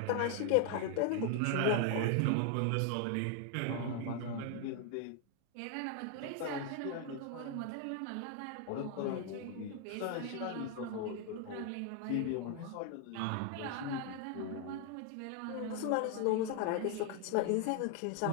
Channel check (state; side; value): different; both; correlation 0.00